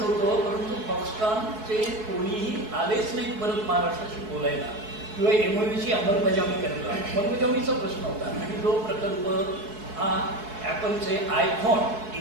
होतो, परंतु फॉक्सकॉनचे कोणीही आलेच नाहीत परत महाराष्ट्राशी बोलायला किंवा एमओयूची अंमलबजावणी करायला. अंमलबजावणीचा प्रश्न होता आणि जो प्रकल्प हा ॲपलचे आयफोन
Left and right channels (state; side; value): late; left; 4.7 ms